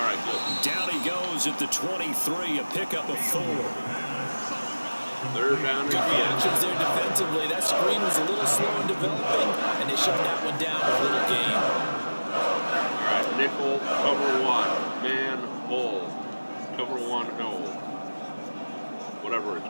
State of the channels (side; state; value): both; inverted; correlation -1.00